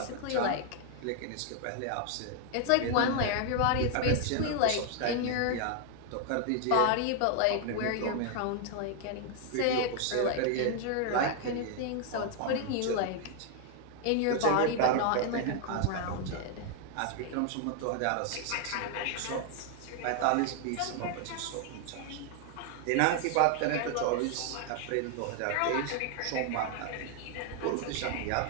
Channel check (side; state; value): both; different; correlation 0.00